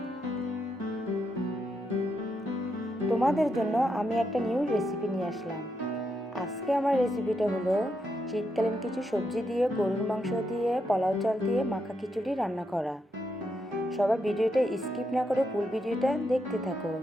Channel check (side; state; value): both; normal; correlation 0.81